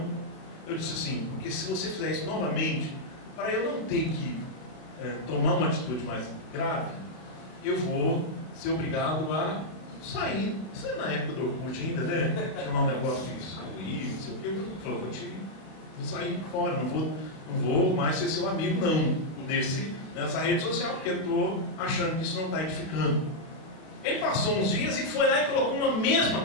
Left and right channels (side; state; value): right; late; 32 ms